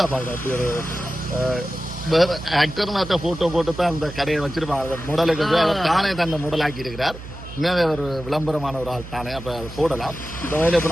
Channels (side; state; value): right; noise; hum, 13 dB below the sound